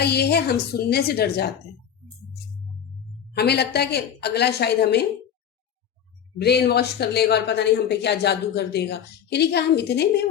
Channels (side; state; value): right; quieter; 8.8 dB